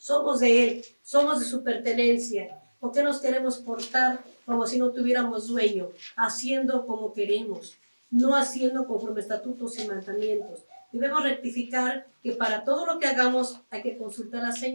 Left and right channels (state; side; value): inverted; both; correlation -1.00